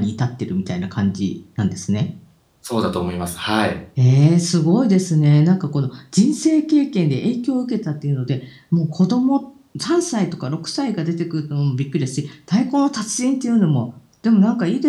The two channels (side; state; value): both; identical; correlation 1.00